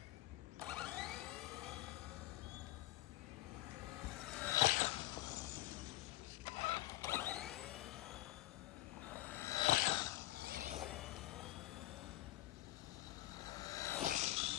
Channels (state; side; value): quieter; right; 17.8 dB